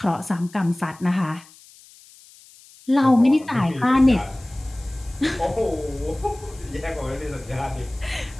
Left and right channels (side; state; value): left; noise; hiss, 24 dB below the sound